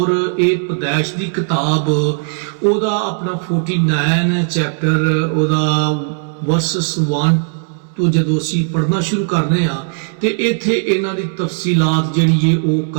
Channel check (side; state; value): left; silent; digital silence